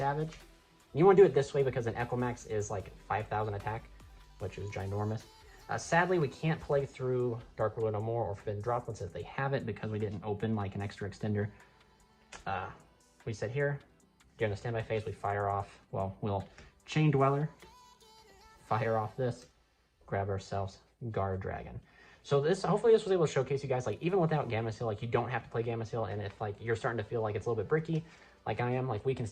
And you want to do it this way because an Equimax is like 5,000 attack, which is ginormous. Sadly, we can't play through Dark World No More or Forbidden Droplets if they have it because we didn't open like an extra extender. We sit here, during the standby phase, we fire off, well, we'll Chain Dweller, fire off this, grab ourselves Guard Dragon. So hopefully this was able to showcase you guys, like, even without Gamma Seal, like, you don't have to play Gamma Seal, and if, like, you're starting to feel like it's a little bit bricky, like I am, like, we can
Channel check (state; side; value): identical; both; correlation 1.00